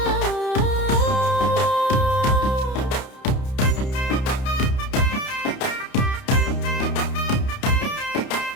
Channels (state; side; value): late; right; 31 ms